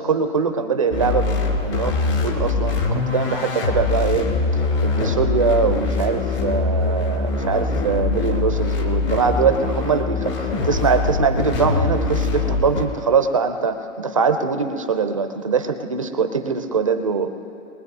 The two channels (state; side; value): normal; both; correlation 0.04